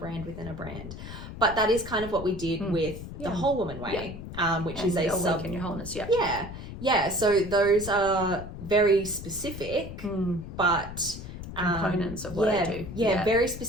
within a brand. But that is kind of what we did with the Whole Woman Way, which and is a sub in your wholeness. Yeah. So those are very specific, but components of what I do. Very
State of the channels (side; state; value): left; noise; rumble, 10 dB below the sound